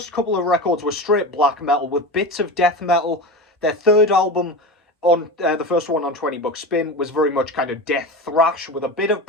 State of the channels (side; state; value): both; normal; correlation 0.26